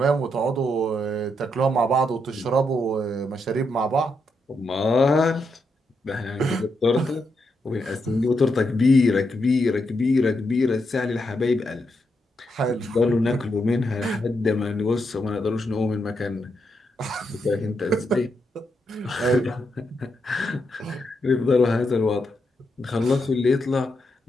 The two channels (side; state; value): both; normal; correlation 0.82